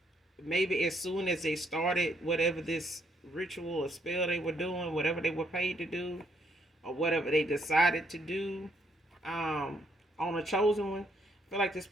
maybe as soon as they started whatever this ritual or spell they were doing, whatever they were paid to do, or whatever they decided to do on a chosen one. I feel like this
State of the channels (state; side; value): normal; both; correlation 0.71